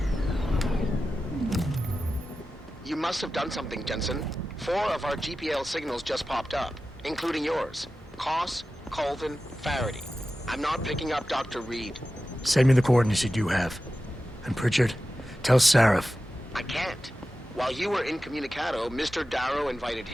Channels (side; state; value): both; normal; correlation 0.93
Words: You must have done something, Jensen. 4 of our GPL signals just popped up, including yours. Koss, Colvin, Faraday. I'm not picking up Dr. Reed. Send me the coordinates you do have. And Pritchard, tell Sarif. I can't. While you were incommunicado, Mr. Darrow invited